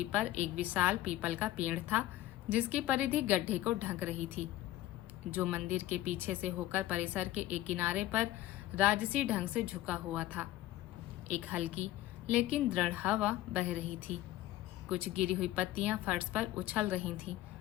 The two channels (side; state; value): right; quieter; 15.2 dB